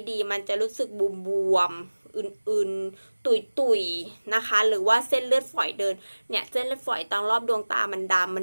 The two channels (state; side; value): inverted; both; correlation -1.00